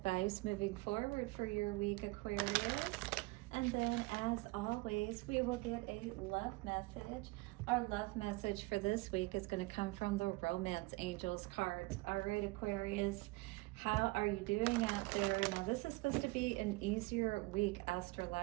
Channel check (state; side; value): quieter; left; 23.7 dB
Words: moving forward for your week, Aquarius. And then, as always, we will get a love message. Our love message for this week is going to come from the Romance Angels cards. All right, Aquarius, how are you doing out there? Now, this is supposed to be an easier week,